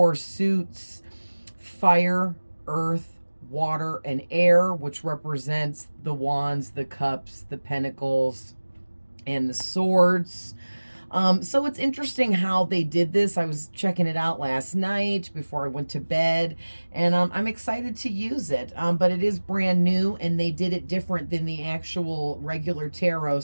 suits: fire, earth, water, and air, which represents the wands, the cups, the pentacles, and the swords. So it's interesting how they did this. I was checking it out last night before I went to bed, and I'm excited to use it. But it is brand new, and they did it different than the actual regular tarot,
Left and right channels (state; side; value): inverted; both; correlation -1.00